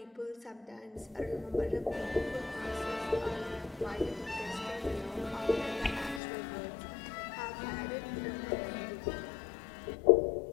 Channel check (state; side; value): drops out; right; at 6.2 s